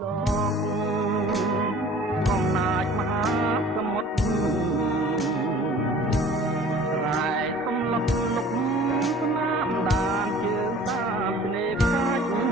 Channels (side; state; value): both; normal; correlation 0.48